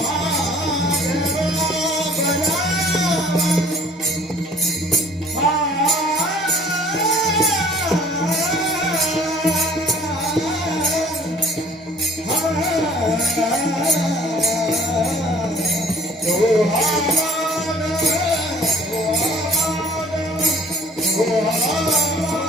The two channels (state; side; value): normal; both; correlation 0.53